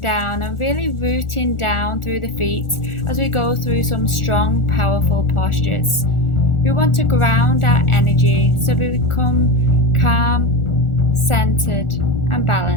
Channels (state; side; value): late; right; 1.4 ms